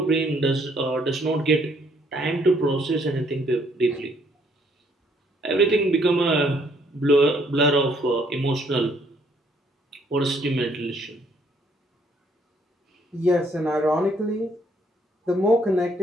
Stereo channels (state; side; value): normal; both; correlation 0.67